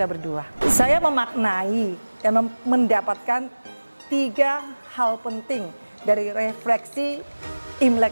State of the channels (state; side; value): inverted; both; correlation -1.00